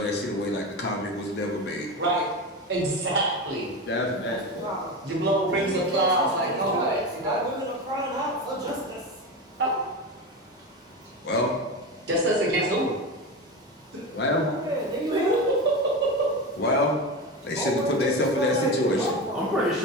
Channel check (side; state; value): both; normal; correlation 0.22